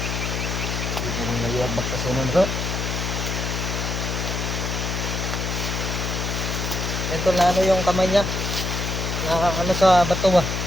Ito nang nayuagbak sa sunon bro. Ito na ano yung kamay niya. Na ano sa bato ba?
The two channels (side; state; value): left; noise; hum, 2 dB below the sound